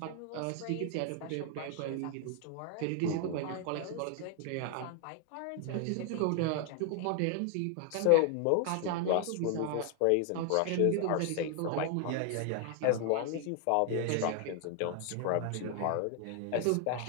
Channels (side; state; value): both; different; correlation 0.00